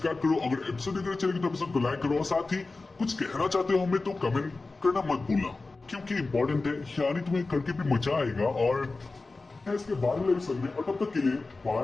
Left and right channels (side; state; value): right; quieter; 3.6 dB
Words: करो। अगर एपिसोड देख रहे चैनल तो एपिसोड को लाइक करो और साथ ही कुछ कहना चाहते हो हमें तो कमेंट करना मत भूलना, क्योंकि इंपॉर्टेंट है, यानी तुम्हें करके भी मजा आएगा। और इसके बाद वाले एपिसोड में और तब तक के लिए